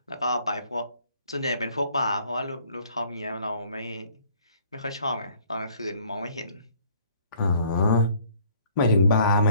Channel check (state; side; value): inverted; both; correlation -0.59